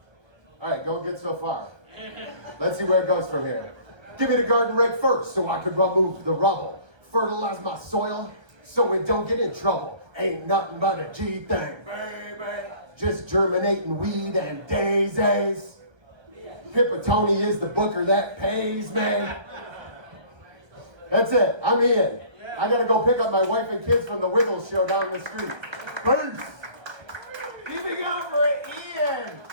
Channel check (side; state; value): left; late; 1.3 ms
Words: All right, going good so far. Let's see where it goes from here. Give me the garden rake first so I could remove the rubble. Fertilize my soil so it don't get in trouble. Ain't nothing but a G thing, baby. Just germinating weed and daisies. Pipitone is the booker that pays, man. That's it, I'm in. I gotta go pick up my wife and kids from the Wiggles show down the street. Peace. Keep it going for Iain